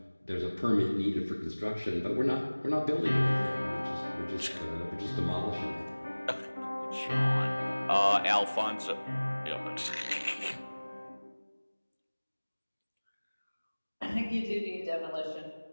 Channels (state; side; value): inverted; both; correlation -1.00